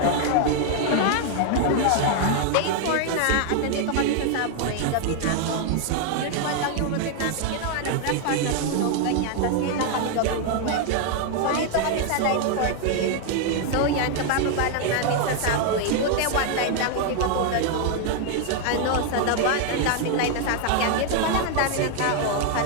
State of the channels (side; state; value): both; different; correlation 0.00